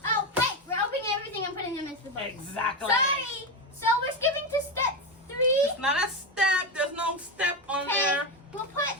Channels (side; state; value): both; normal; correlation 0.13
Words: Oh wait, we're opening everything and putting them into the bowl. Exactly. Sorry. So we're skipping to step 3. It's not a step. There's no step on there.